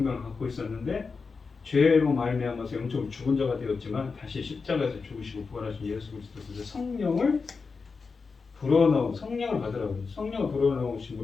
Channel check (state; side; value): quieter; right; 4.8 dB